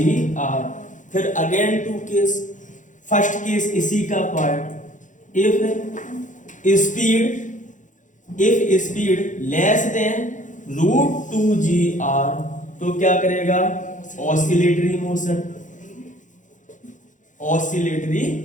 फिर again two case, first case इसी का part, if speed less than √2gr, तो क्या करेगा, ऑसिलेटरी मोशन, ऑसिलेटरी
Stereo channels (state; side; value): late; right; 0.37 ms